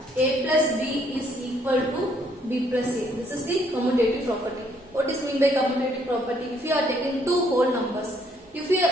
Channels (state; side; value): normal; both; correlation 0.68